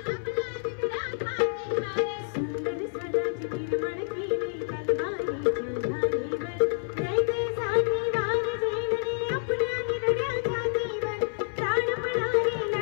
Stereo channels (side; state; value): right; silent; 59 dB below the other